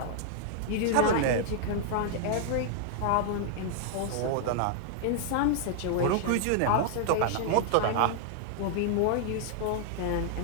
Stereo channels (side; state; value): both; different; correlation -0.01